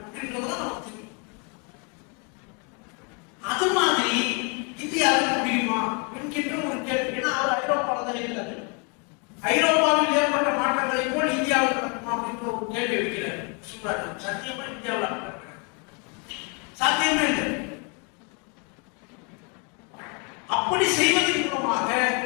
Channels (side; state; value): right; quieter; 35.3 dB